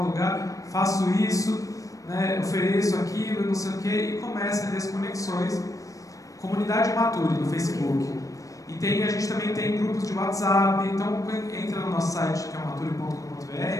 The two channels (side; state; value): right; late; 0.16 ms